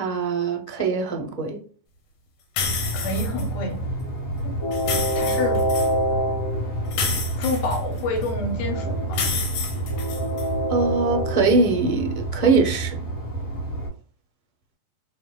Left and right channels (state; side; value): late; right; 10 ms